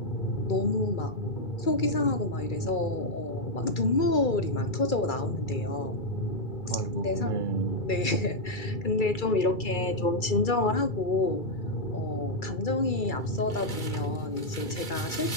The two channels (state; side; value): late; right; 2.3 ms